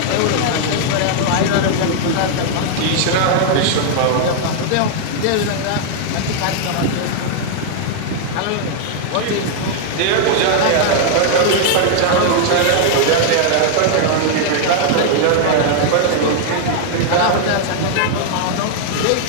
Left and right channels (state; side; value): different; both; correlation 0.00